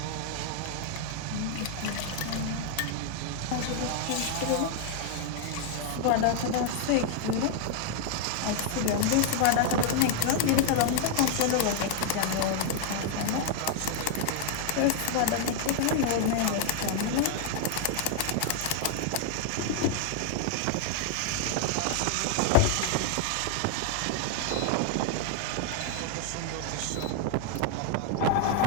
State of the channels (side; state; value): both; different; correlation 0.00